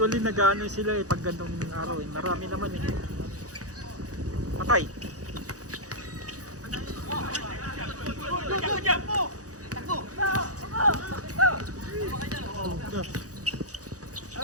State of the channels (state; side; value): late; left; 0.67 ms